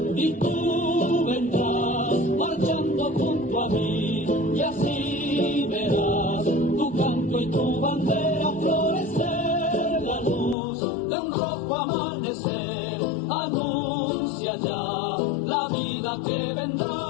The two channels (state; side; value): drops out; right; at 10.6 s